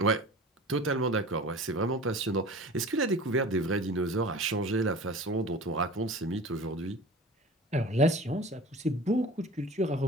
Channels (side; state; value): both; normal; correlation 0.39